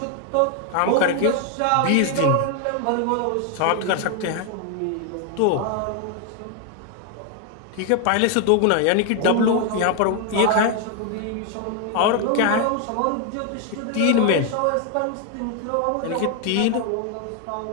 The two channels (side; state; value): both; different; correlation 0.01